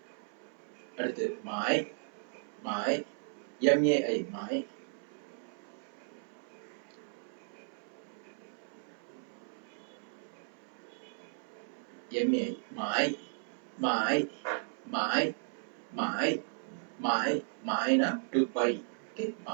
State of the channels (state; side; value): silent; left; 54 dB below the other